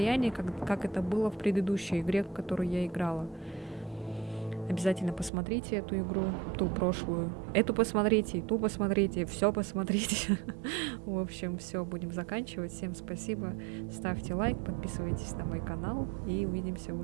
как это было в предыдущей игре, в которую я играла. Обязательно посмотрите эту игру, ту прошлую. Эту посмотрите, ту посмотрите, все посмотрите. В общем, все, будем заканчивать. Всем спасибо. Ставьте лайк, подписывайтесь на мой канал. И увидимся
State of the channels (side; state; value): left; drops out; at 5.3 s